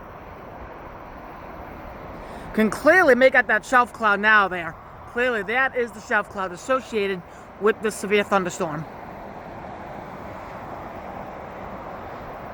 Can clearly make out that shelf cloud now there. Clearly, that is the shelf cloud associated with this severe thunderstorm.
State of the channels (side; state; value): both; identical; correlation 1.00